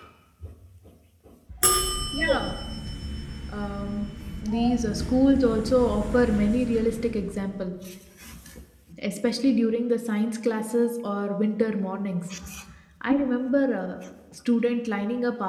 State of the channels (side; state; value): both; identical; correlation 1.00